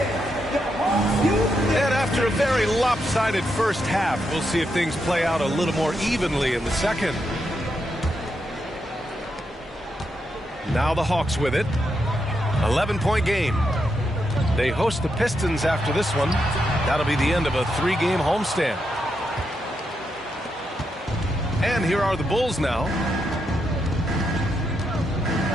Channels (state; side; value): normal; both; correlation 0.82